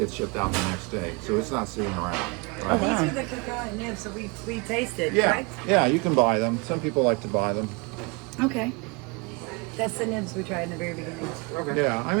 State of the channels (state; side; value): quieter; left; 29.5 dB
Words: shipped out the next day. So it's not sitting around. Right? Oh, wow. These are the cacao nibs, so we tasted, Yeah, right? yeah, you can buy them. Some people like to buy them. Okay. That's the nibs we tried in the very beginning. Yeah, I